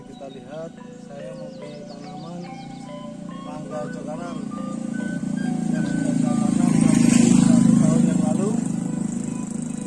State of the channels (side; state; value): both; identical; correlation 1.00